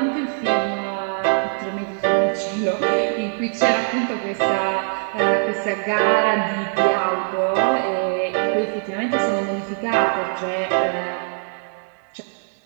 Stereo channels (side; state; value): left; silent; 64 dB below the other